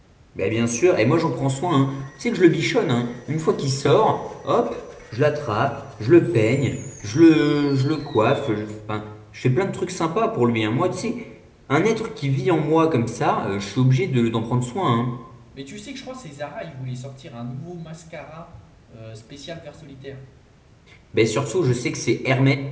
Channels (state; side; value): identical; both; correlation 1.00